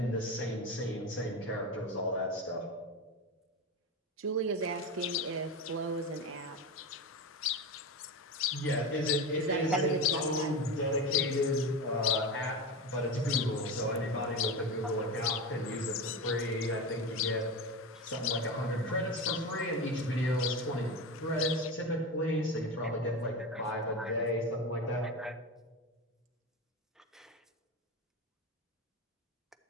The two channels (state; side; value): normal; both; correlation 0.22